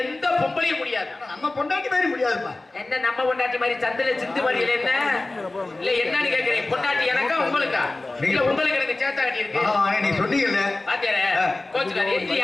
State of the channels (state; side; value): quieter; right; 3.0 dB